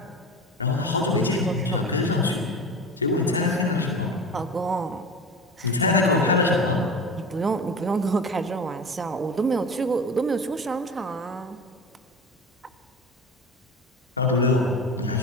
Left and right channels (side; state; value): both; normal; correlation 0.32